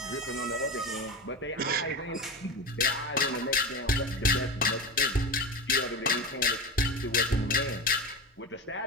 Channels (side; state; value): both; normal; correlation 0.24